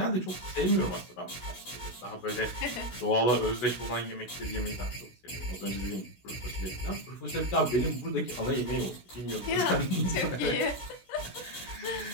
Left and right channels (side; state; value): right; late; 16 ms